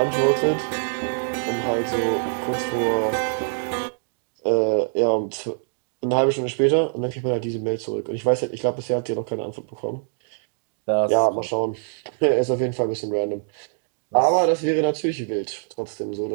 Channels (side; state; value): left; silent; digital silence